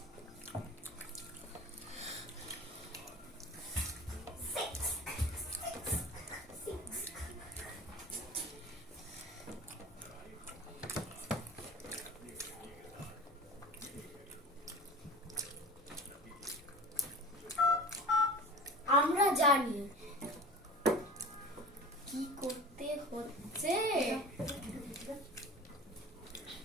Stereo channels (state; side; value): normal; both; correlation 0.37